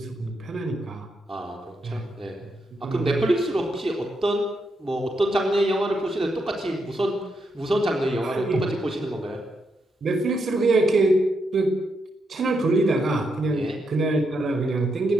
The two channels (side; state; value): both; normal; correlation 0.81